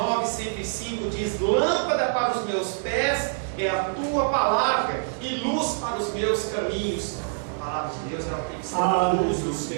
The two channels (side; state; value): left; silent; 61 dB below the other